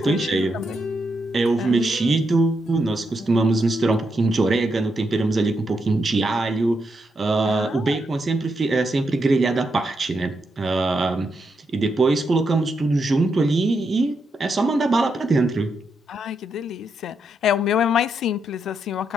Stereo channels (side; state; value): both; normal; correlation 0.82